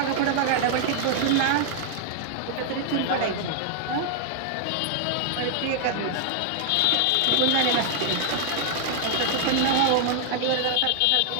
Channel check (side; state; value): both; different; correlation 0.00